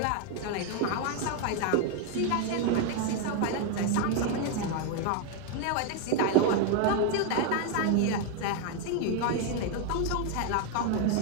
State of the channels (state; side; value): different; both; correlation 0.01